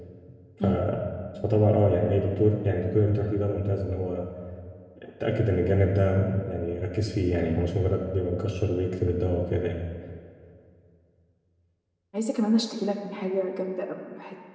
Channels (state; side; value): identical; both; correlation 1.00